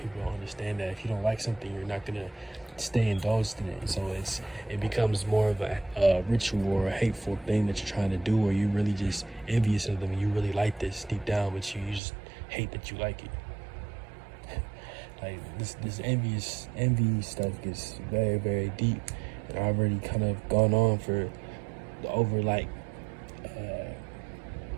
don't understand that if you don't like something, you're not going to stay indulged in it. So it becomes more of a ritual or a hateful thing that you're trying to do, or you're really just envious of them and you really like this deep down, but you just hate that you like it. Like this envy stuff gets very, very deep, and I've already kind of gone on for over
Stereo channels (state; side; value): drops out; left; at 12.0 s